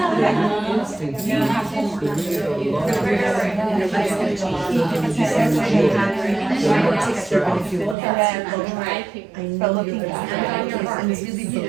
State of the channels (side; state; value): left; drops out; at 8.0 s